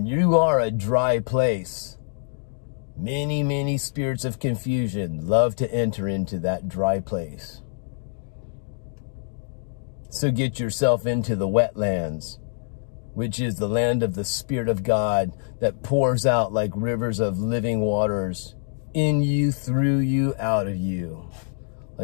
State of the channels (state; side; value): silent; right; digital silence